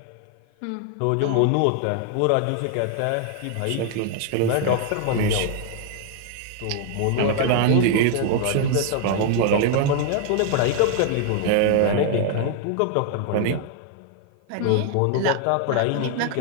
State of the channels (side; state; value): both; different; correlation 0.00